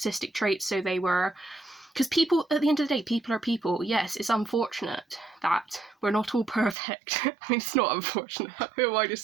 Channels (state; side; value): drops out; left; at 6.8 s